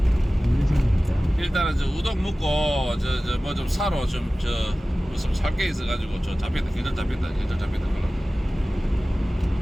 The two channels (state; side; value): normal; both; correlation 0.97